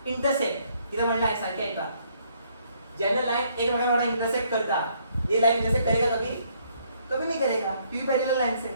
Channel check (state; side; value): inverted; both; correlation -0.68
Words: इंटरसेक्ट इथे म्हणलं आहे सारखे आहे का, ज्यांना लाइन एकमेकांना इंटरसेक्ट करता, ये लाइन इंटरसेक्ट करेगा कभी, कभी नहीं करेगा, क्योंकि पैरेलल लाइन से